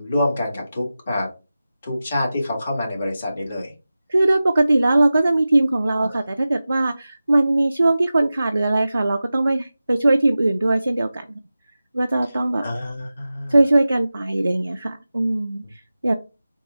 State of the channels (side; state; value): both; inverted; correlation -0.95